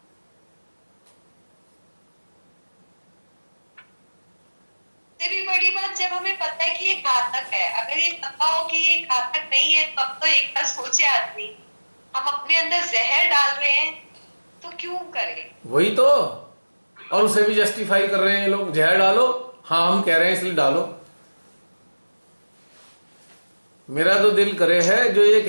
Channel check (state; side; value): inverted; both; correlation -1.00